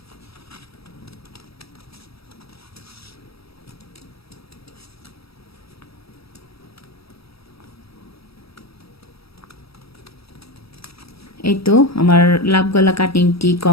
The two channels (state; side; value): late; right; 0.77 ms